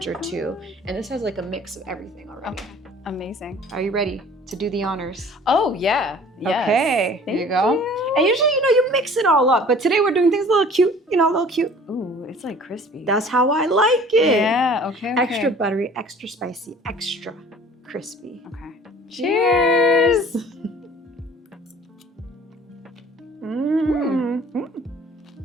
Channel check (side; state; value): both; normal; correlation 0.49